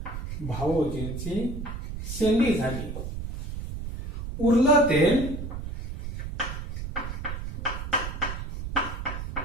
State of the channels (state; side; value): noise; right; rumble, 6 dB below the sound